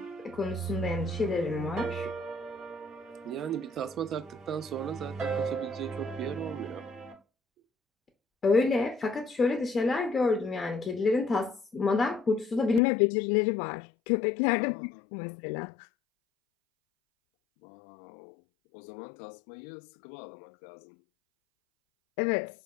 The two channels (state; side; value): drops out; right; at 12.8 s